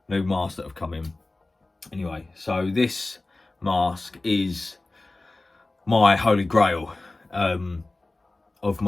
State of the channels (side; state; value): right; quieter; 3.0 dB